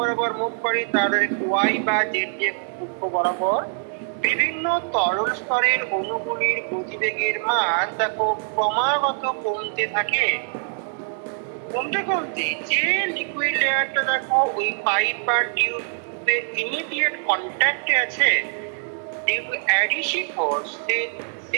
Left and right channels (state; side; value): silent; left; digital silence